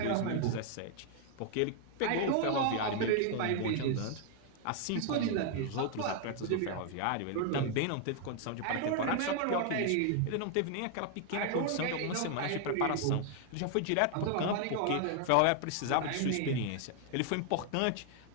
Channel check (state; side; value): different; both; correlation 0.00